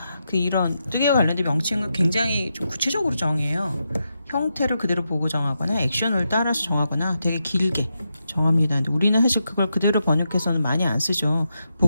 그 이런 뜨개와 관련된 명칭을 굉장히 좀 구체적으로 정해요. 형태를 그대로 보고 정하거나 액션을 따라서 정하거나 되게 길게 정합니다. 근데 우리는 사실 그걸 그대로 번역해서는 많이 안 쓰죠.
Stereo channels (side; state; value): both; inverted; correlation -0.86